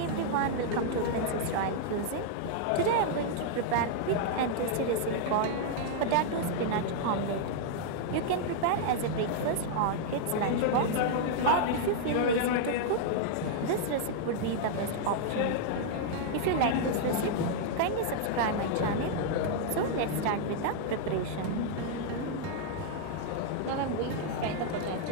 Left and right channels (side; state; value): both; different; correlation -0.01